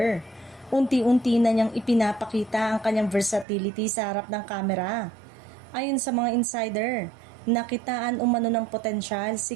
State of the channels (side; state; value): left; drops out; at 3.5 s